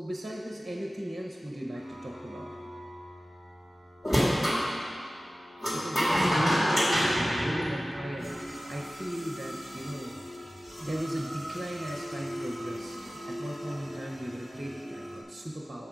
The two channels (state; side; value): normal; both; correlation 0.96